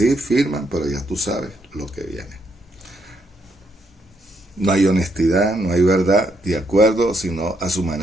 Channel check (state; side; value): normal; both; correlation 0.75